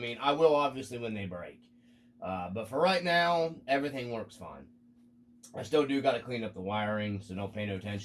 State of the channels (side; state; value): both; identical; correlation 1.00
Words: I will obviously when they break. But for right now, everything works fine. I still do got to clean up the wiring, so don't pay no